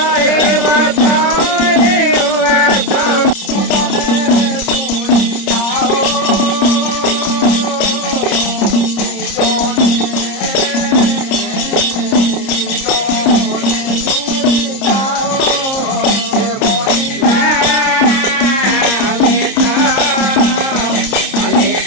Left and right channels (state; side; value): late; right; 30 ms